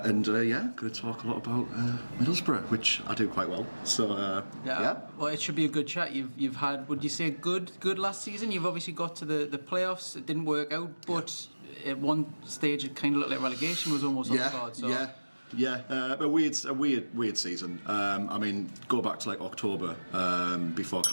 And going to talk a lot about Middlesbrough, which I do quite well. So, yeah. Well, it should be a good chat. You've had, would you say, good last season? You've obviously got to the playoffs. It didn't work out, but at one stage it kind of looked like relegation was almost on the card. So. A weird season. I mean, go back to like October before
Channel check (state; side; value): inverted; both; correlation -1.00